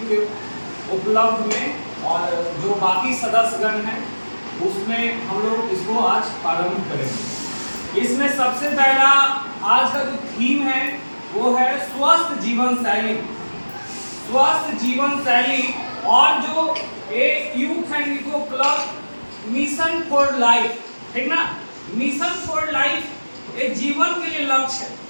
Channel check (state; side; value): inverted; both; correlation -1.00